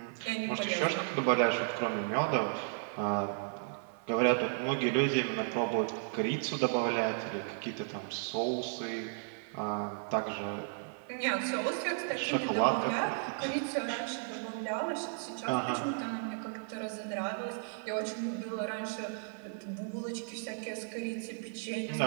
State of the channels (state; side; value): silent; left; 55 dB below the other